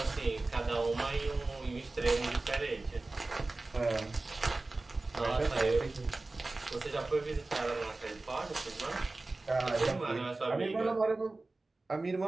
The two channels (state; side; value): quieter; left; 3.2 dB